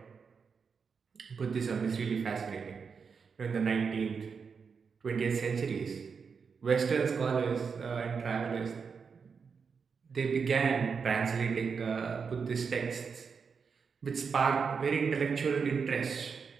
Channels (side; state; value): left; quieter; 5.7 dB